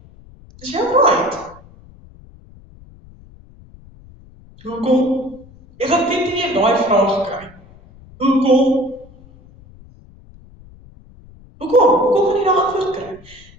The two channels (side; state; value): left; noise; rumble, 24 dB below the sound